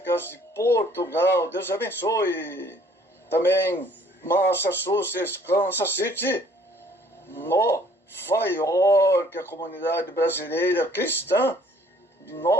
de Portugal. Deus abençoe. Também Massachusetts, Kansas City, Nova York, a comunidade brasileira cristã de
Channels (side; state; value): both; normal; correlation 0.59